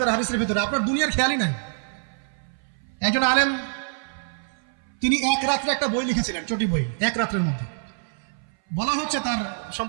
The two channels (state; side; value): silent; left; 59 dB below the other